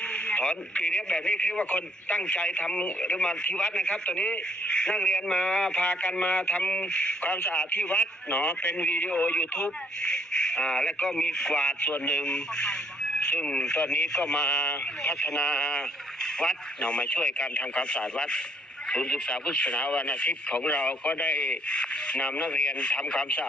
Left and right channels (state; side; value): normal; both; correlation 0.66